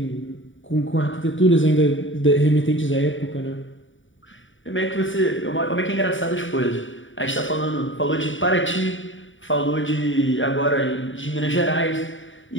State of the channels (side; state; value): right; late; 0.56 ms